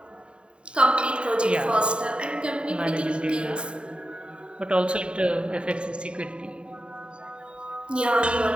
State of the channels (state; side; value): late; left; 0.053 ms